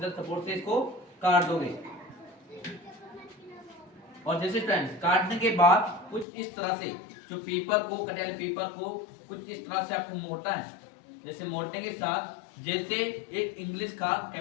सपोर्ट से इसको काट दोगे। और जैसे फ्रेंड्स काटने के बाद कुछ इस तरह से जो पेपर को कटे वाले पेपर को कुछ इस तरह से आपको मोड़ना है। जैसे मोड़ने के साथ जैसे एक इंग्लिश का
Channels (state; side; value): drops out; right; at 6.2 s